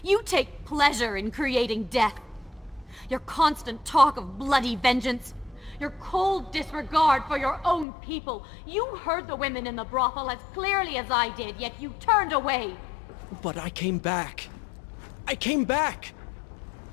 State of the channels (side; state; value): right; drops out; at 7.9 s